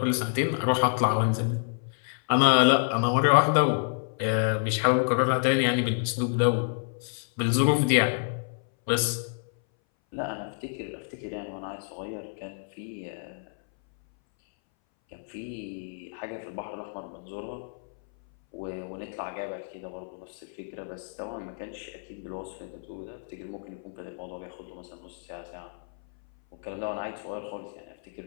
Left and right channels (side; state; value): right; silent; 59 dB below the other